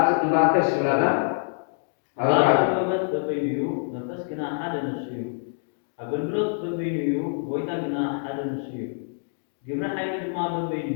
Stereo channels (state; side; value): silent; right; digital silence